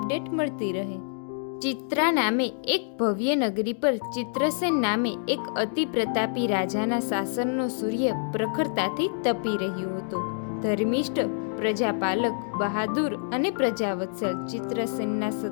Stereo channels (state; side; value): silent; right; digital silence